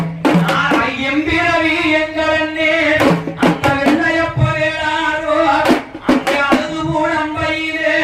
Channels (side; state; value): both; identical; correlation 1.00